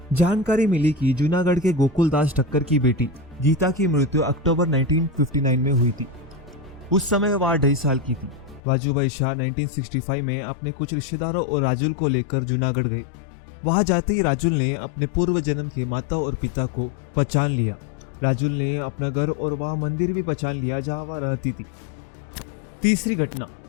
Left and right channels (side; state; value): right; drops out; at 8.6 s